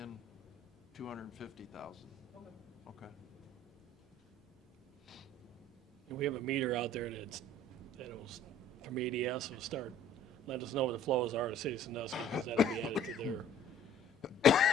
250,000. Okay. Okay. And we have a meter out there that'll, from ADS, will start, let us know what the flows are to Citizen Dust, because that'll be added to their bill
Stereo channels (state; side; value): normal; both; correlation 0.53